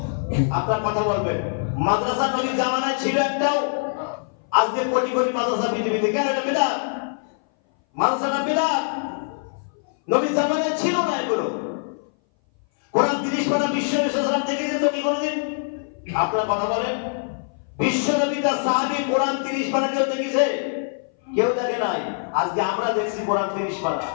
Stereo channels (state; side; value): silent; right; 59 dB below the other